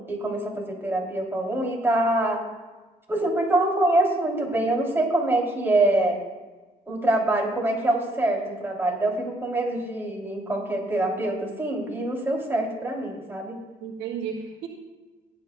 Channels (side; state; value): both; normal; correlation 0.68